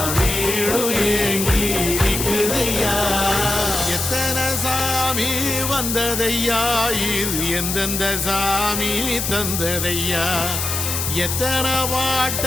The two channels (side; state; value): left; noise; hiss, 2 dB below the sound